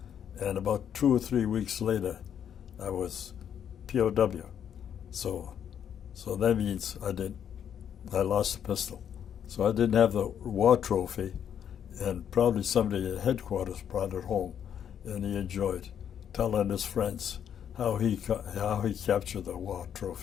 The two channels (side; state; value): right; quieter; 8.9 dB